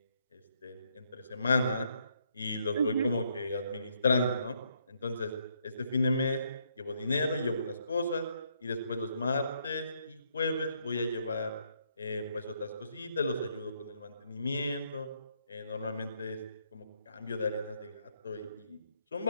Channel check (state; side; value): inverted; both; correlation -0.73